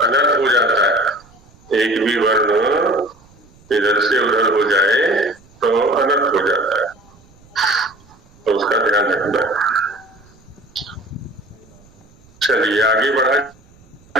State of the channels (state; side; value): noise; right; rumble, 28 dB below the sound